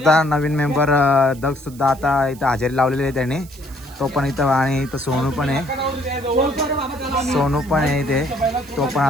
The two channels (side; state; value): right; noise; hiss, 22 dB below the sound